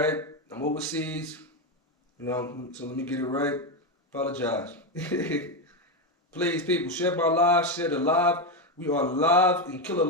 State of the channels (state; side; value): normal; both; correlation 0.10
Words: I'm overseas. So let me get it right. Apologize. Please, people, share my live. Share the live. We are live in